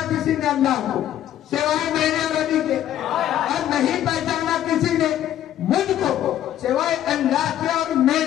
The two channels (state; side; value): quieter; right; 11.6 dB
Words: किसी ने अल्लाह को सिवाय मेरे नबी के, और नहीं पहचाना किसी ने मुझको सिवाय अल्लाह के और